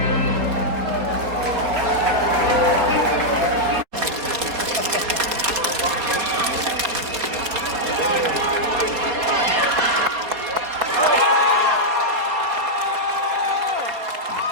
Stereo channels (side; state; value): left; late; 4.0 ms